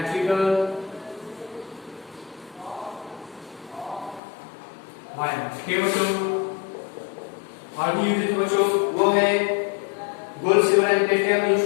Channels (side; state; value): right; drops out; at 4.2 s